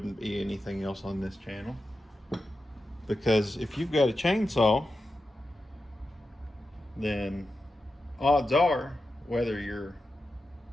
be anything else on this channel. Because if you've got a chainsaw, then odds are, whether you're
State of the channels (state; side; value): normal; both; correlation 0.91